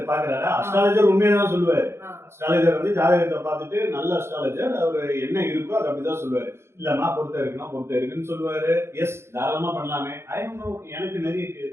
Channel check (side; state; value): left; late; 0.12 ms